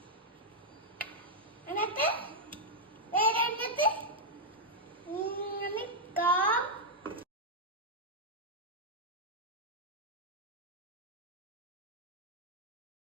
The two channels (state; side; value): normal; both; correlation -0.03